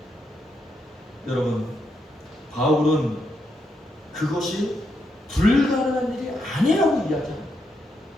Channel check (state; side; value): normal; both; correlation 0.80